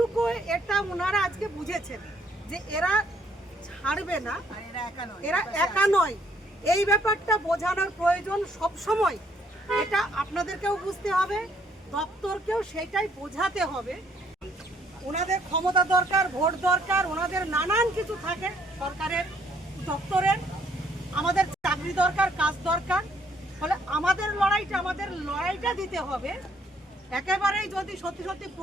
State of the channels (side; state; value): both; normal; correlation 0.66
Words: এটা ওনারা আজকে বুঝেছেন যে এরা ছাড়বে না, এরা একা নয়। এই ব্যাপারটা বোঝানোর প্রয়োজন সব সময়, এটা আপনাদেরকেও বুঝতে হবে, দপ্তরকেও সেটাই বোঝাতে হবে। ওনাদের ক্ষমতা দরকার, ভোট দরকার, ওনাদের নানান কিছু থাকে সরকারের দপ্তরের, আমাদের চাকরি দরকার, কাজ দরকার। ফলে আমাদের লড়াইটা দিতে হবে। একেবারেই যদি সত্যি সত্যি